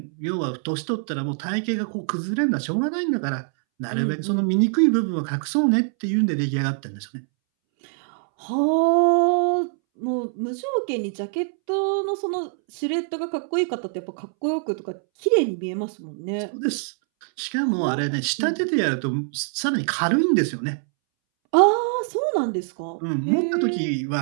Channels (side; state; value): left; silent; 63 dB below the other